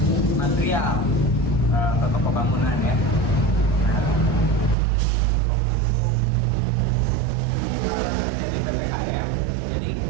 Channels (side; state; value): left; drops out; at 4.8 s